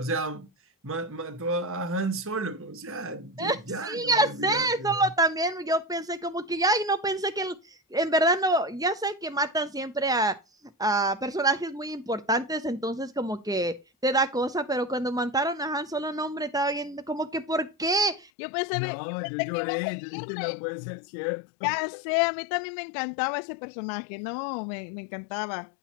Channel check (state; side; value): drops out; right; at 18.3 s